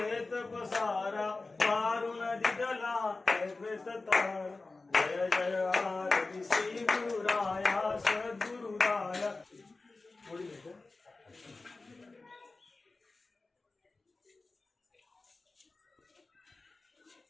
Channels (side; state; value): right; quieter; 3.5 dB